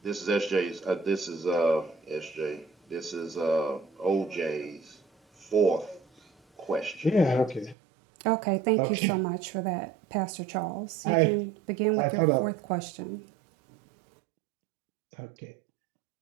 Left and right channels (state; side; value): drops out; left; at 7.8 s